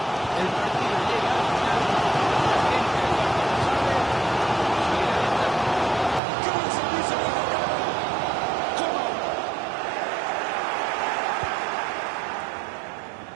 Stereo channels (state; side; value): drops out; left; at 6.2 s